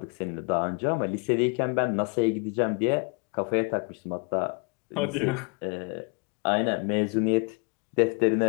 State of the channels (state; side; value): quieter; right; 34.2 dB